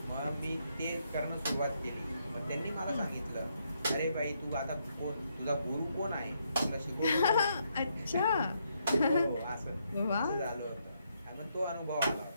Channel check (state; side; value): inverted; both; correlation -0.76